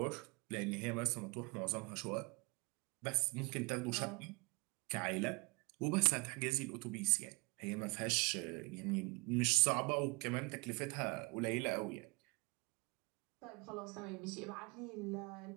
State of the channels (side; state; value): left; quieter; 29.1 dB